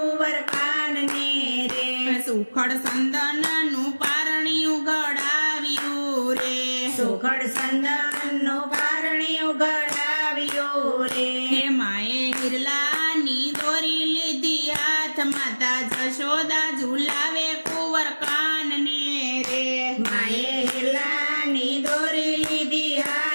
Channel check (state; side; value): inverted; both; correlation -1.00